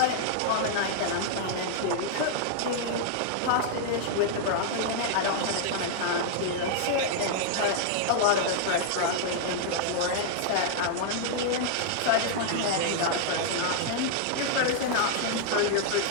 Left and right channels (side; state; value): both; different; correlation -0.01